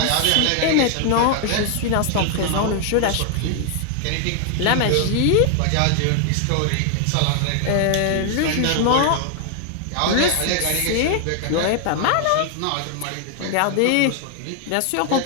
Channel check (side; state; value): both; different; correlation 0.00